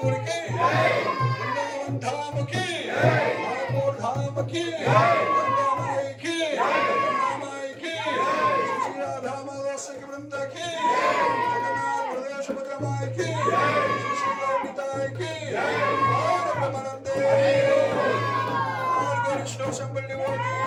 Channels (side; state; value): both; identical; correlation 1.00